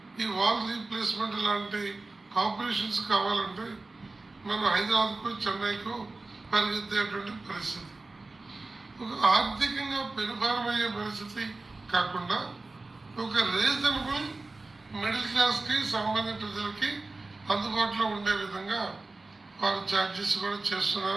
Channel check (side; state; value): left; quieter; 3.3 dB